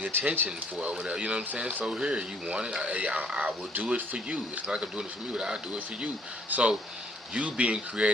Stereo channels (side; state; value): both; normal; correlation 0.62